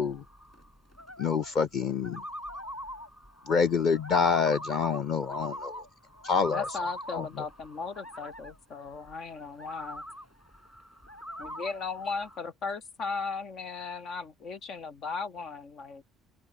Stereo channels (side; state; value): right; quieter; 4.9 dB